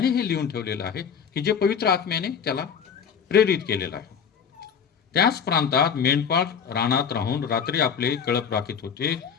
हे लिहून ठेवलेलं आहे की जे पवित्र आत्म्याने त्याला प्रेरित केलेलं आहे. त्याच प्रांतात मेंढपाळ रानात राहून रात्री आपले कळप राखीत होते.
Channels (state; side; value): quieter; right; 7.2 dB